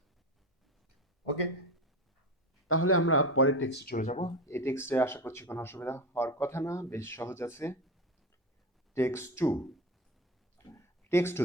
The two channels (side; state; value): both; normal; correlation 0.23